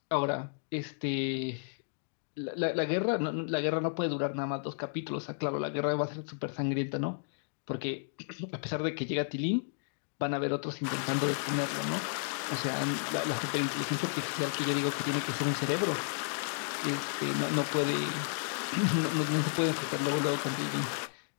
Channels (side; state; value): right; silent; digital silence